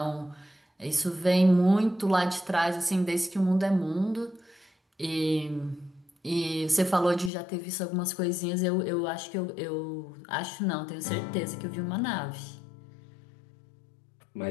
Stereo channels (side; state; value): right; drops out; at 7.3 s